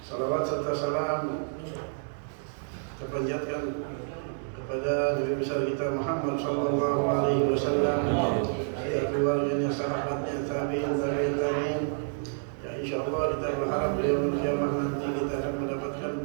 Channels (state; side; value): silent; left; digital silence